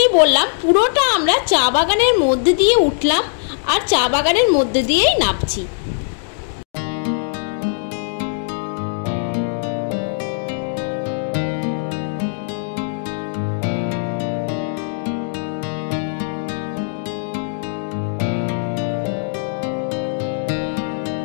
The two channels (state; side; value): silent; right; digital silence